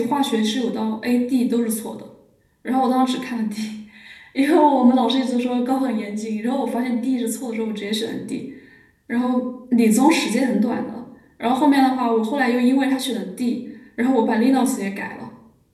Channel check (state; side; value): identical; both; correlation 1.00